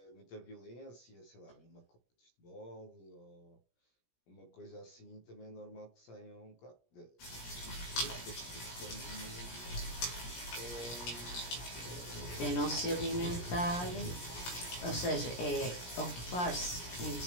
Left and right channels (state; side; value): late; right; 17 ms